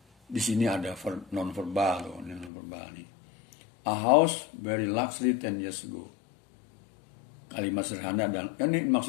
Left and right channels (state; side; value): drops out; right; at 2.5 s